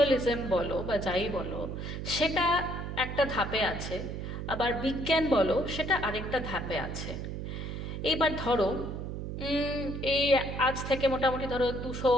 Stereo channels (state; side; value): noise; right; hum, 6 dB below the sound